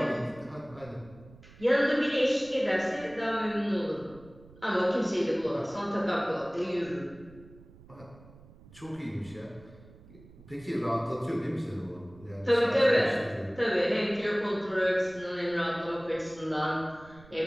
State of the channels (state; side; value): noise; right; rumble, 22 dB below the sound